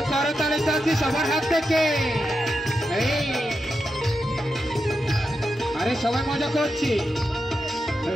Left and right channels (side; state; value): both; normal; correlation 0.87